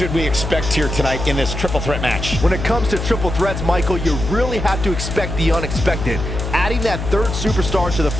we expect here tonight in this triple threat match? When it comes to triple threats, Michael, you really have to expect the unexpected. Adding that third superstar to the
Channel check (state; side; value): noise; left; hum, 5 dB below the sound